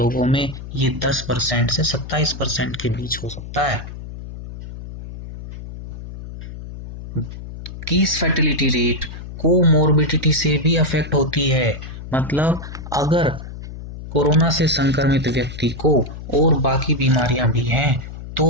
में ये 10% से 27% के बीच हो सकता है। केस फैटेलिटी रेट कोमोर्बिडिटी से भी अफेक्ट होती है। मतलब अगर कोरोना से संक्रमित व्यक्ति को और बाकी बीमारियां भी हैं तो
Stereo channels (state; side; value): noise; left; hum, 11 dB below the sound